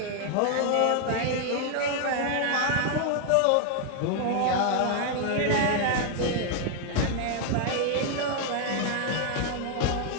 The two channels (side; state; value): both; different; correlation 0.00